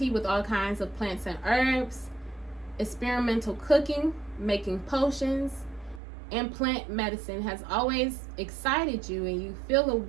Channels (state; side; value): drops out; left; at 6.0 s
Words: with all kinds of plants and herbs, experimental cooking, making potions, and plant medicine has always excited you, and you feel a